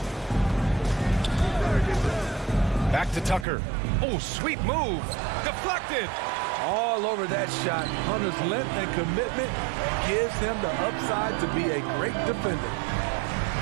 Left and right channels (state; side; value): drops out; left; at 3.5 s